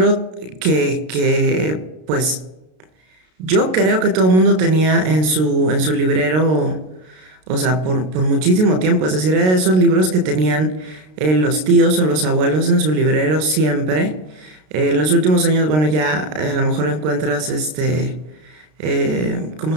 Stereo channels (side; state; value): left; late; 33 ms